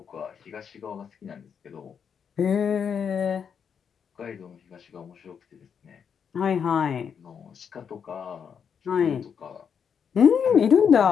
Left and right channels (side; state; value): right; quieter; 7.2 dB